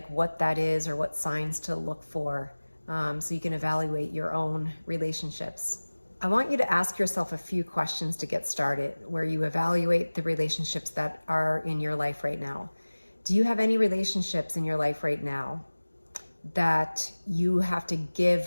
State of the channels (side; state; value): both; inverted; correlation -1.00